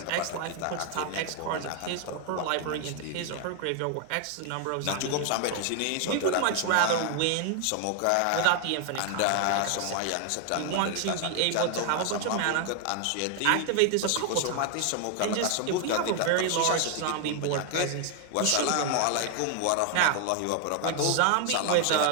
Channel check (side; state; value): both; different; correlation 0.00